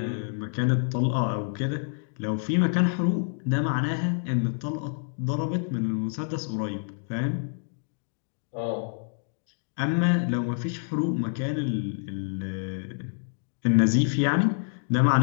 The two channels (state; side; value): silent; right; digital silence